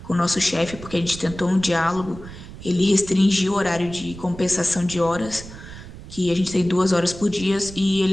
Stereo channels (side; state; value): right; noise; rumble, 14 dB below the sound